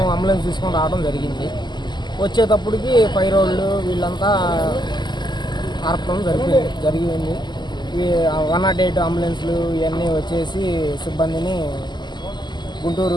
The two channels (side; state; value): right; late; 0.21 ms